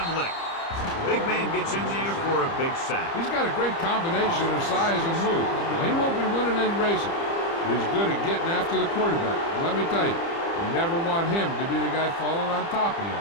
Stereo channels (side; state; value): right; late; 30 ms